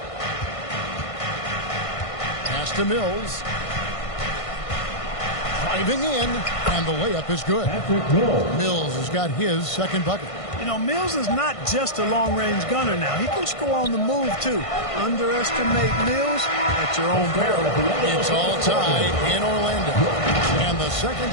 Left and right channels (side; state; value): right; late; 1.5 ms